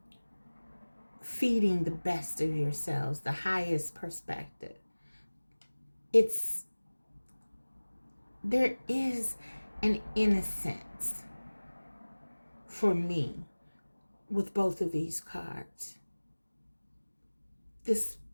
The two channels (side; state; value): both; inverted; correlation -1.00